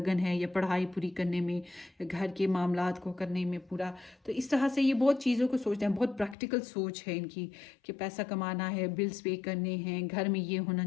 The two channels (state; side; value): drops out; right; at 6.4 s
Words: है, या पढ़ाई पूरी करने में, या घर के मामलात को करने में पूरा। तो इस तरह से ये बहुत चीज़ों को सोचते हैं। बहुत प्रैक्टिकल सोच है इनकी कि पैसा कमाना है, बिल्स पे करने हैं, घर में ये होना